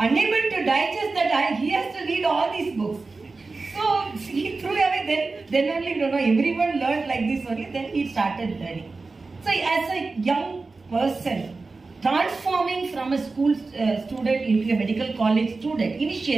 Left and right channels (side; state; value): left; quieter; 3.8 dB